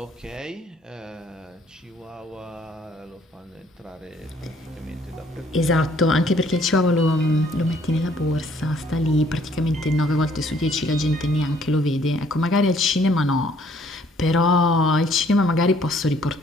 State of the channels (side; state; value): both; normal; correlation 0.62